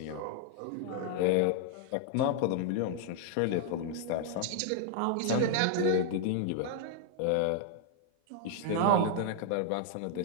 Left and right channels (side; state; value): both; different; correlation 0.00